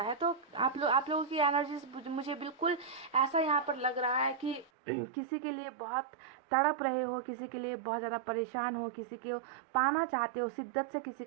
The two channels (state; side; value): drops out; left; at 4.7 s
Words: है। तो आप लोगों की एनर्जी मुझे बिल्कुल ऐसा यहाँ पर लग रहा है कि किसी के लिए बहुत तड़प रहे हो, किसी के लिए बहुत ज़्यादा परेशान हो, किसी को पाना चाहते हो, शिद्दत से किसी